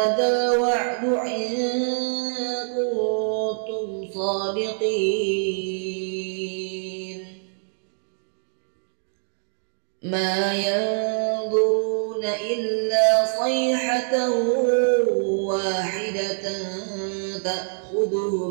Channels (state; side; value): silent; left; digital silence